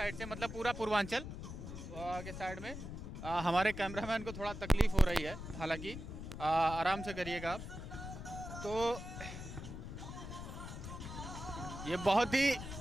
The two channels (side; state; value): left; noise; rumble, 9 dB below the sound